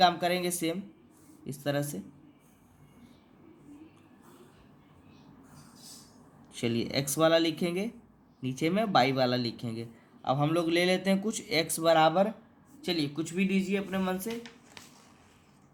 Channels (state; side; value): identical; both; correlation 1.00